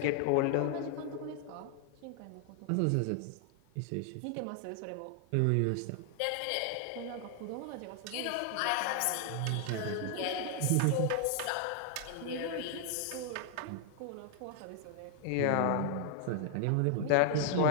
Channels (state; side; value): different; both; correlation 0.00